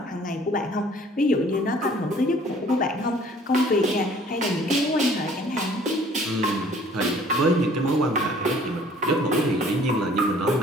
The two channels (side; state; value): both; normal; correlation 0.54